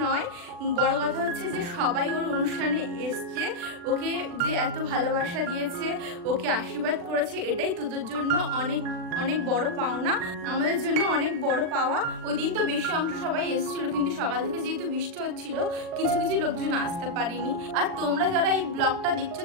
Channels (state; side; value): late; left; 40 ms